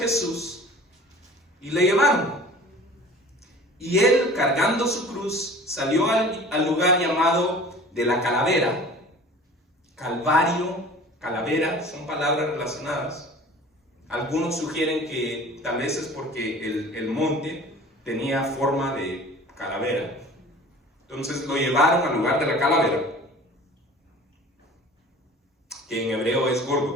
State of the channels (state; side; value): normal; both; correlation 0.44